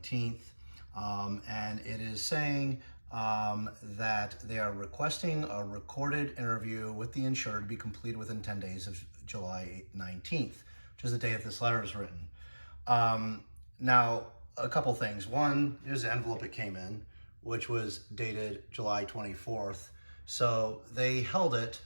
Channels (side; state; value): both; inverted; correlation -1.00